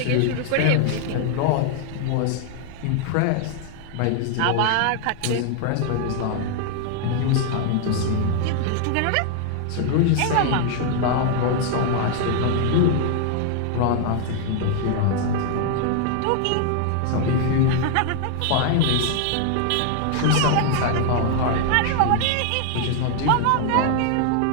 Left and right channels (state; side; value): different; both; correlation 0.00